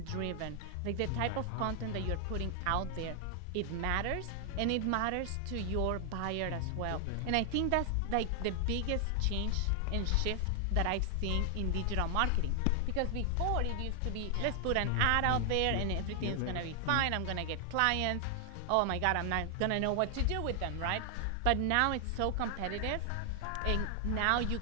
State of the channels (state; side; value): different; both; correlation 0.00